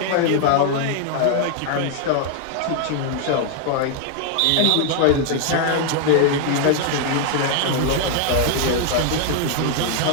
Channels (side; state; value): both; different; correlation 0.00